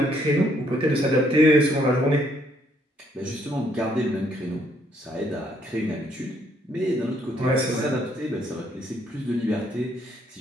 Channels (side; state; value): both; normal; correlation 0.69